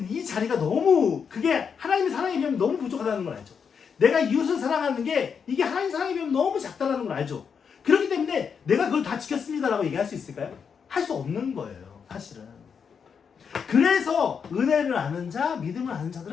이 자리가 너무 그게 하나님의 사랑에 비하면 너무 부족하다는 걸 알죠. 내가 이웃을 사랑하는 게 이게 하나님 사랑에 비하면 너무 작다는 걸 알죠. 그렇기 때문에 내가 그걸 다 지켰습니다라고 얘기할 수 있을까요? 할 수 없는 거예요. 사실은. 그래서 은혜를 아는 자, 믿음을 아는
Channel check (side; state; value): right; quieter; 6.6 dB